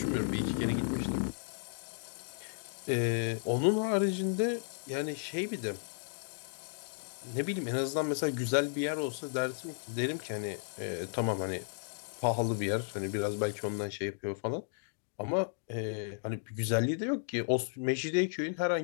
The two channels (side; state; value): right; silent; digital silence